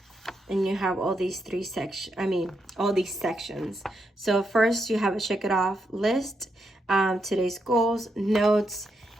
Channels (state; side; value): normal; both; correlation 0.81